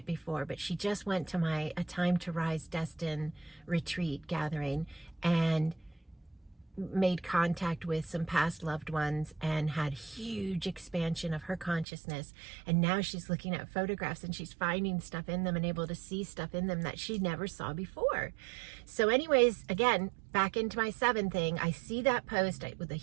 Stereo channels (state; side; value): drops out; left; at 11.9 s